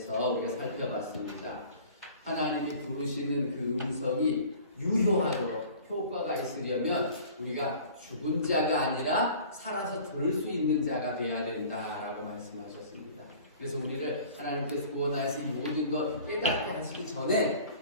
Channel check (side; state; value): both; inverted; correlation -0.46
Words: 우리가 살펴봤습니다. 하나님이 부르시는 그 음성이 유효하도록 효과가 있으려면 우리가 죽은 자가 아니라 살아서 들을 수 있는 자가 되어야 된다라고 말씀하셨습니다. 그래서 우리를 하나님께서 구원하여서 이 모든 것 깨닫게 하시기 전에